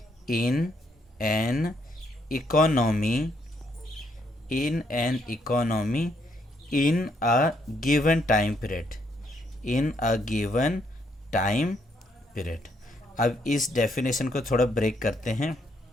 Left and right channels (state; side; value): normal; both; correlation 0.73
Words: in a given time period. अब इस definition को थोड़ा break करते हैं.